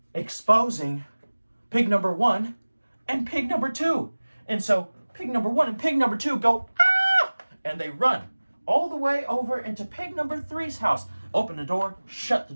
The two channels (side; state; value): both; inverted; correlation -1.00